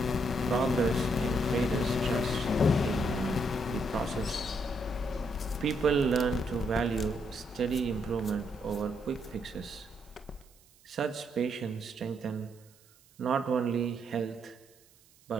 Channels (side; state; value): right; noise; hiss, 29 dB below the sound